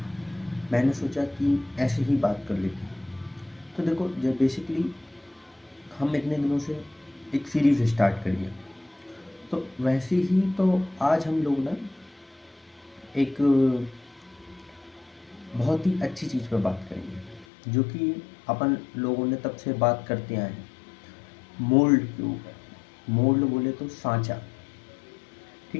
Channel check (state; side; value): drops out; right; at 17.4 s